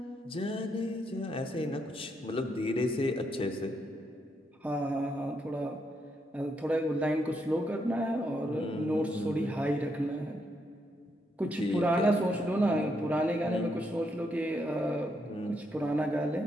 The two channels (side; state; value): both; normal; correlation 0.78